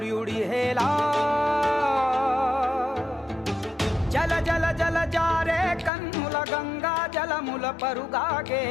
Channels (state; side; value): drops out; right; at 5.9 s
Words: హేలా జల జల జల జారే కన్నుల గంగా జలముల